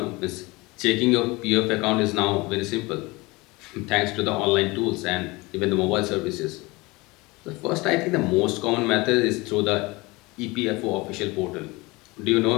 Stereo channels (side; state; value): right; quieter; 23.5 dB